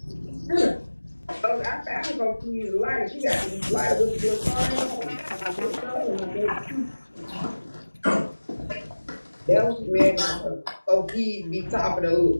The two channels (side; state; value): both; inverted; correlation -1.00